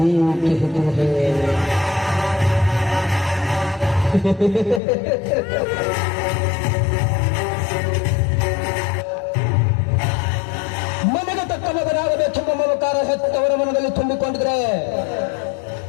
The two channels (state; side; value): drops out; right; at 4.8 s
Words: कहते हैं। ಮನೆಗೆ ತಕ್ಕ ಮಗನಾಗಬೇಕೆಂಬ ಮಮಕಾರ ಹೆತ್ತವರ ಮನದಲ್ಲಿ ತುಂಬಿಕೊಂಡಿದ್ರೆ,